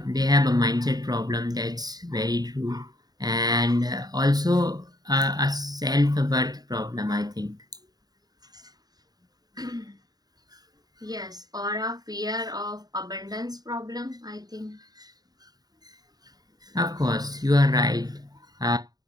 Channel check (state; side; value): late; left; 0.19 ms